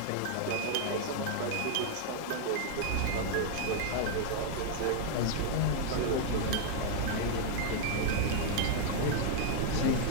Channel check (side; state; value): both; different; correlation 0.00